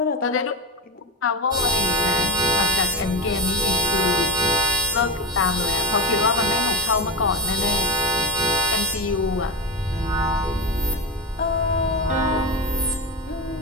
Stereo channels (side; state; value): both; normal; correlation 0.17